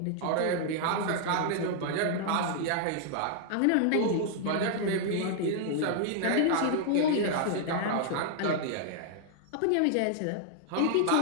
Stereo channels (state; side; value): different; both; correlation 0.00